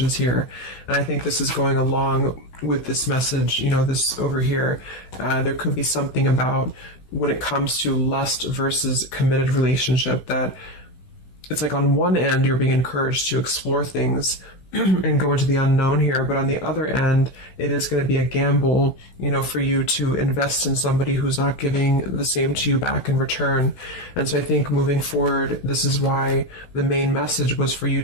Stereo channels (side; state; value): right; late; 16 ms